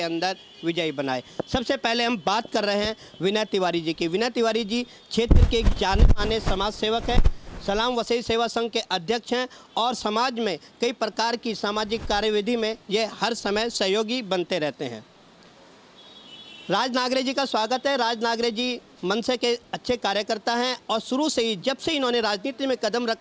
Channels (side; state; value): both; identical; correlation 1.00